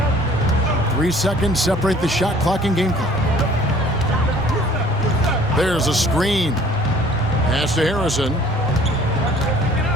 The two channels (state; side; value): normal; both; correlation 0.53